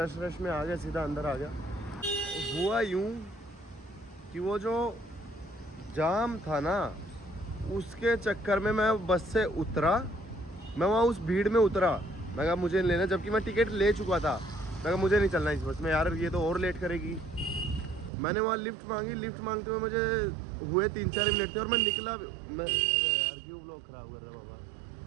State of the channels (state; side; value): drops out; left; at 18.1 s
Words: में आ गया, सीधा अंदर आ गया. हुआ यूँ कि वो जो जाम था ना, उसके चक्कर में मैं बस से उतरा. मैं वहाँ उस भीड़ में उतरा, मैं कहा मुझे लेना, जबकि मैं टिकट ले चुका था. मैं कहा मुझे नहीं चलना इस बस में यार, ये तो और लेट करेगी. मैंने वहाँ लिफ्ट मांगी. लिफ्ट मांगते हुए मुझे हुए 3-4 मिनट थे, और मैं निकला. मैं अरे यार क्यों व्लॉग ख़राब कर रहे बाबा,